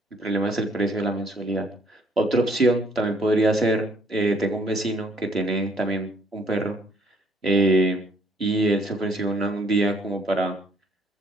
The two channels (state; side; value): normal; both; correlation 0.63